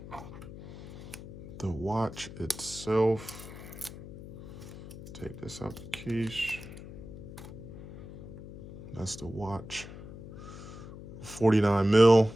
The watch itself. Take this out the case. That's the watch. 49 mil.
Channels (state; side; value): noise; left; hum, 13 dB below the sound